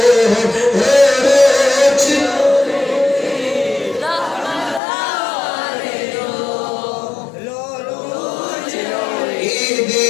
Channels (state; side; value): drops out; right; at 4.8 s